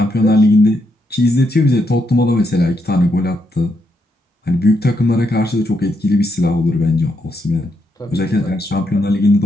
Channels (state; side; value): normal; both; correlation 0.79